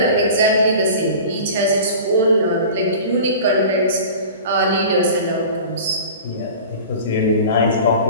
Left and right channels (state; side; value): inverted; both; correlation -0.38